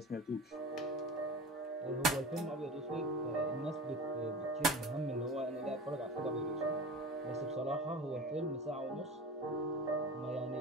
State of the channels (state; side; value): normal; both; correlation 0.34